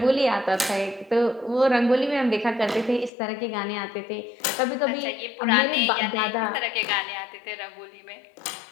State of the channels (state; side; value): drops out; right; at 3.1 s